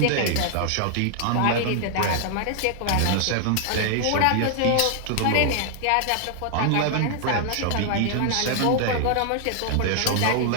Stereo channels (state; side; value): different; both; correlation 0.00